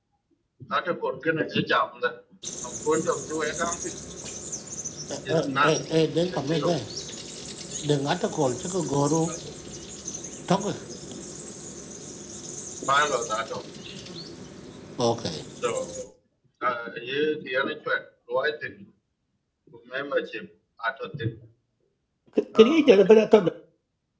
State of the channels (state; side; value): identical; both; correlation 1.00